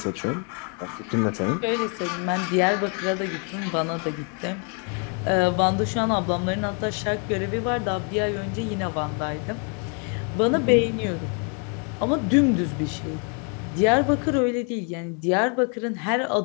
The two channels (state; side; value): quieter; right; 39.0 dB